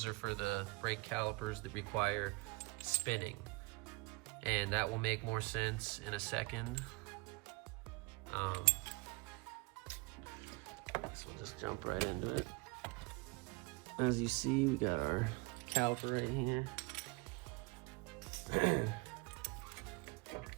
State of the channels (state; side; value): quieter; left; 26.1 dB